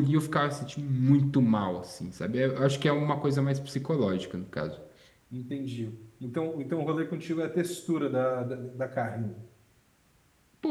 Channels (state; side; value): identical; both; correlation 1.00